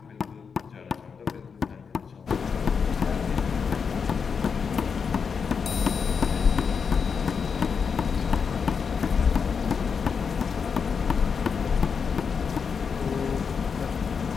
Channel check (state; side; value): quieter; right; 6.0 dB